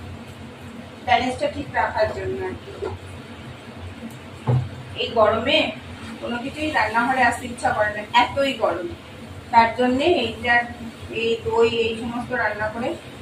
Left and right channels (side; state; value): both; identical; correlation 1.00